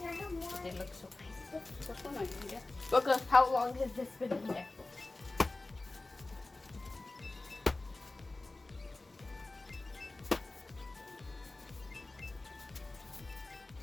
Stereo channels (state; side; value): quieter; right; 3.1 dB